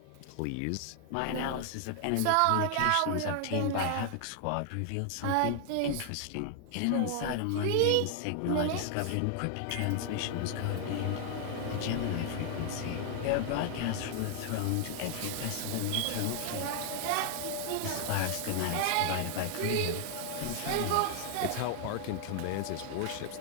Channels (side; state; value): both; different; correlation 0.00